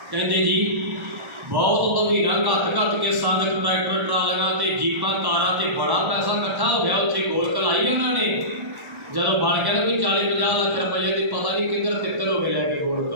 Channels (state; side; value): late; left; 1.1 ms